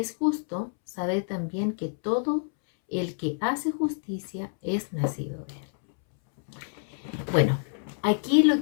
justo, sabed también que todo el que hace justicia es nacido de Él. Bueno, aquí lo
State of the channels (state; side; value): silent; right; 60 dB below the other